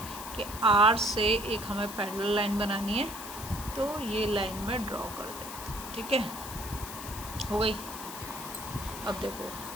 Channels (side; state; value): left; noise; hiss, 10 dB below the sound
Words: कि आर से एक हमें पैरेलल लाइन बनानी है, तो ये लाइन में ड्रॉ कर देते हैं। ठीक है, हो गई। अब देखो,